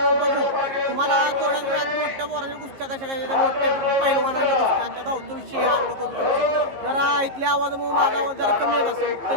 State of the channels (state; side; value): late; left; 15 ms